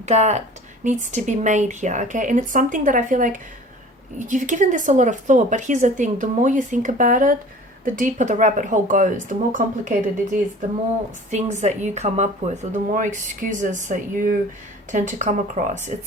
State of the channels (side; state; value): both; normal; correlation 0.45